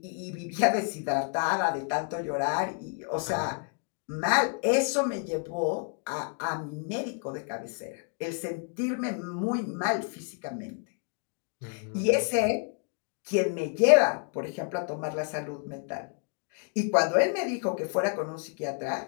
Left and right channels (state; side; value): quieter; right; 39.3 dB